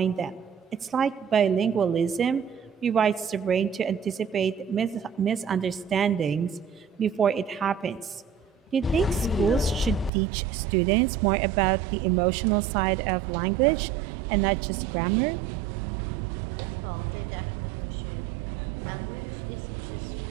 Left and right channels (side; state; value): left; drops out; at 10.1 s